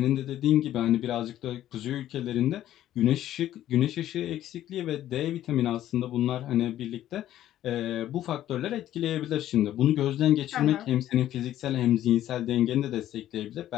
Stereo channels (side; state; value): right; quieter; 12.6 dB